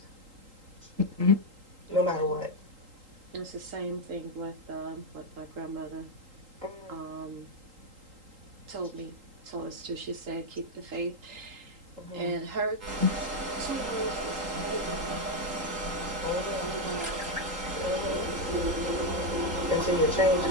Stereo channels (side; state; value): left; late; 3.8 ms